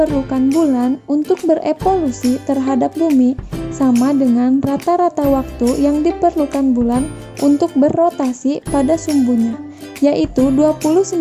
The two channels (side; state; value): both; identical; correlation 1.00